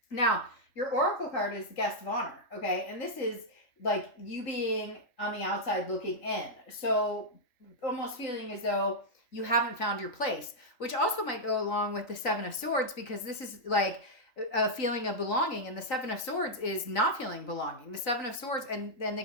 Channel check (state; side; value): late; right; 3.9 ms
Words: Now, your oracle card is the guest of honor, okay? And this is like you being on the outside looking in. So almost feeling as though you haven't found your place, which also might go along with the 7 of Swords because this is like a feeling of belonging, and the 7 of Swords is not feeling belonging. The 7 of Swords and then the